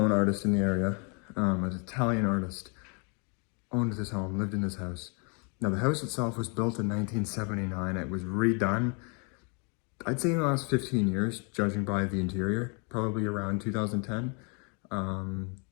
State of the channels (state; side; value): quieter; right; 35.2 dB